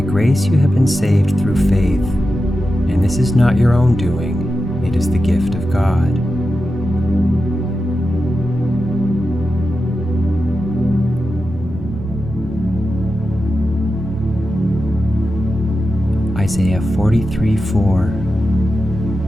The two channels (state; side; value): normal; both; correlation 0.91